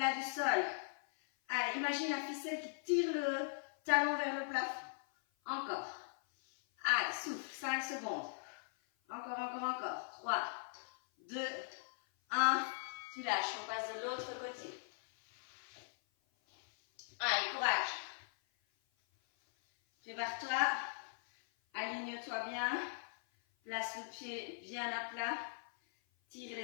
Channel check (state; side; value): silent; right; 51 dB below the other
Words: du sol. Allez, imagine la ficelle qui tire le talon vers le plafond. Encore. Allez, souffle. 5 secondes. Encore, encore, encore. 3, 2, 1. Tu lâches. On passe de l'autre côté. Allez, courage. Prépare-toi. Aligne-toi bien. Place le pied bien à plat. Tire